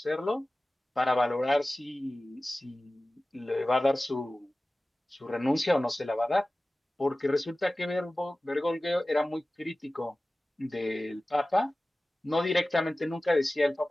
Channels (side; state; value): both; normal; correlation 0.97